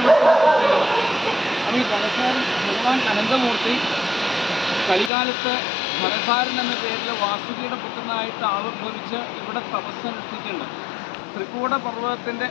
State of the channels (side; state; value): right; drops out; at 5.1 s